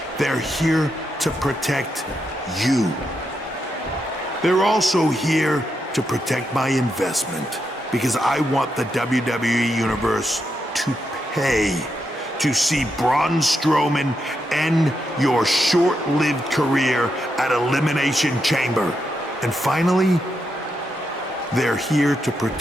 They're here to protect you. They're also here to protect my investment, because I want the WWE Universe to pay to see Braun Strowman end your short-lived career at Elimination Chamber. And finally, they're here to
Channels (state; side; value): normal; both; correlation 0.83